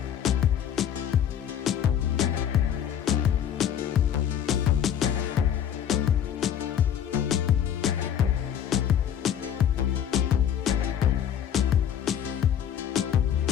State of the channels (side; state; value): right; quieter; 9.5 dB